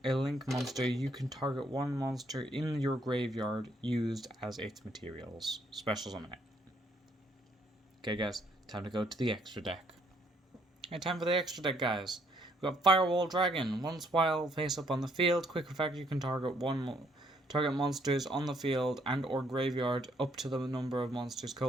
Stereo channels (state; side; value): normal; both; correlation 0.69